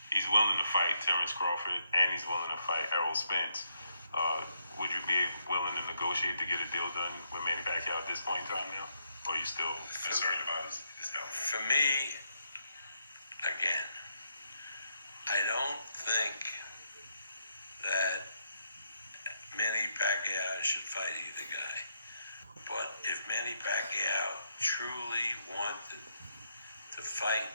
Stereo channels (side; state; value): both; inverted; correlation -0.77